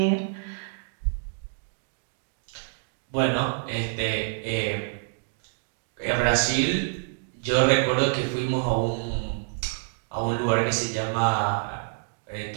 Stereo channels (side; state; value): left; silent; digital silence